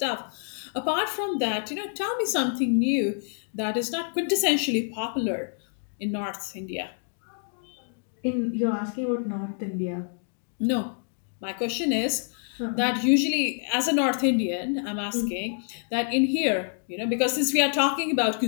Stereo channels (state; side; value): silent; right; 59 dB below the other